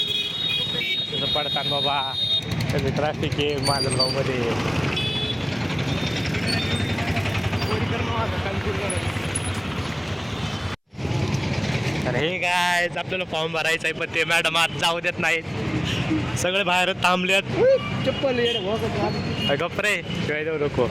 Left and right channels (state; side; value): identical; both; correlation 1.00